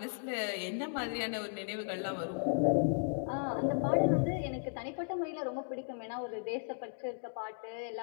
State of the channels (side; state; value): right; silent; digital silence